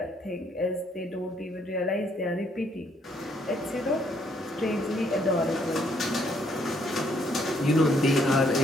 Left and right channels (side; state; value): both; normal; correlation 0.69